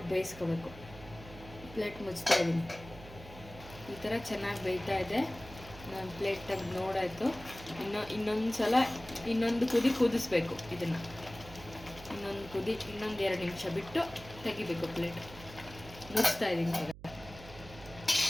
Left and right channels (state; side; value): noise; right; hum, 16 dB below the sound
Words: ಬೇಯಿಸ್ಕೋಬೇಕು. ಪ್ಲೇಟ್ ಮುಚ್ತಾ ಇದ್ದೀನಿ. ಈ ಥರ ಚೆನ್ನಾಗಿ ಬೇಯ್ತಾ ಇದೆ. ನಾನು ಪ್ಲೇಟ್ ತೆಗೆದು ನೋಡಾಯಿತು. ಇನ್ನೊಂದು ಸಲ ಇನ್ನೊಂದು ಕುದಿ ಕುದಿಸ್ಬೇಕು. ಇದನ್ನು ಇನ್ನೊಂದು 2 ನಿಮಿಷ ಬಿಟ್ಟು ತೆಗಿಬೇಕು. ಪ್ಲೇಟ್ ಮುಚ್ತಾ ಇದ್ದೀನಿ.